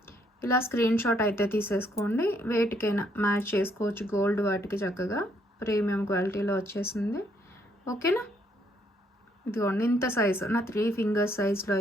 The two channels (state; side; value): normal; both; correlation 0.70